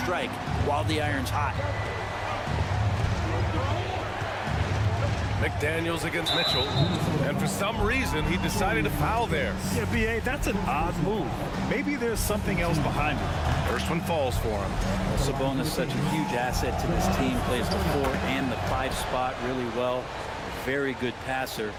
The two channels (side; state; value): both; identical; correlation 1.00